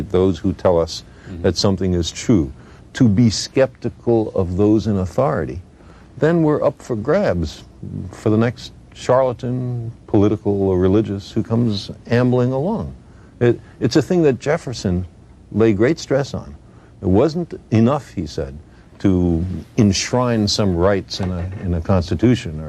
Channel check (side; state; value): both; identical; correlation 1.00